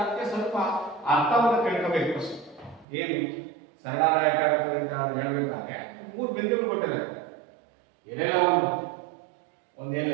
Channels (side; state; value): left; drops out; at 2.9 s